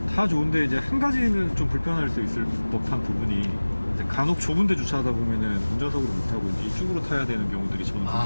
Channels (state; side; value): inverted; both; correlation -1.00